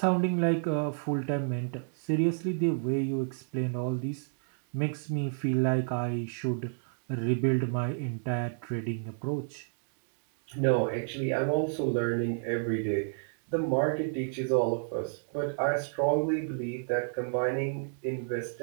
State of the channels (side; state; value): left; silent; digital silence